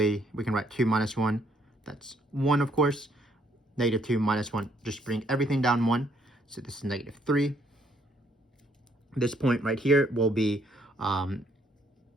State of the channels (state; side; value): normal; both; correlation 0.68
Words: we can write 2 minus 1, that's 1 of course. -2 minus 1, just bring everything down 1. So this is -3. This point right here will be -1,